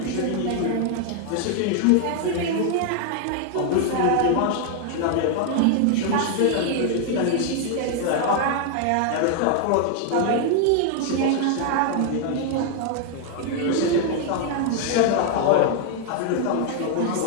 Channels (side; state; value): both; different; correlation 0.00